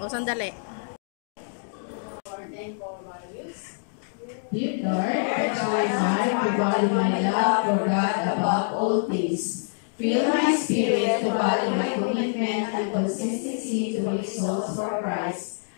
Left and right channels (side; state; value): right; silent; digital silence